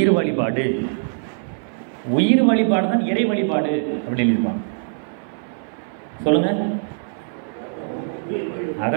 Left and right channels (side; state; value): left; silent; 58 dB below the other